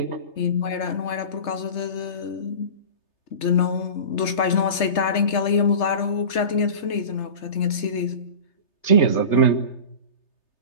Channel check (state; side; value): late; right; 3.3 ms